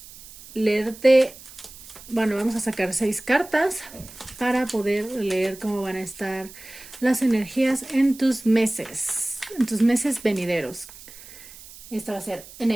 leerte, bueno, vamos a sacar 6 cartas para poder leer cómo van a estar las energías en tus meses venideros. Esta va a ser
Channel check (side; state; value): right; noise; hiss, 18 dB below the sound